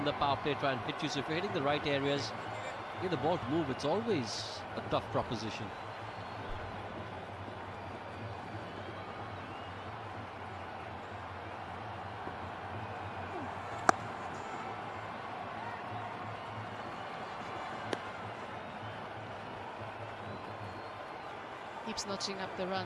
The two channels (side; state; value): both; identical; correlation 1.00